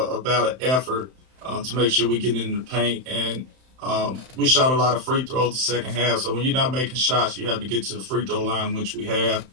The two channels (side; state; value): left; late; 31 ms